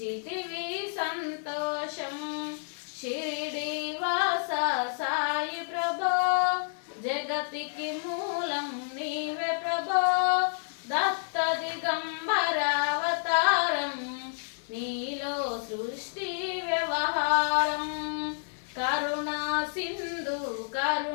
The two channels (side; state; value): right; silent; digital silence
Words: సంతోషం. షిరిడి వాస సాయి ప్రభో, జగతికి మూలం నీవే ప్రభో. దత్త దిగంబరావతారం, నీలో సృష్టి వ్యవహారం. కరుణా సింధు